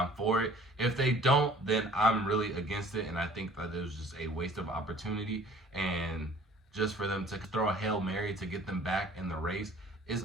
for it. If they don't, then I'm really against it, and I think that it was just a waste of opportunity, and just for them to throw a Hail Mary to get them back in the race is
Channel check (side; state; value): both; normal; correlation 0.51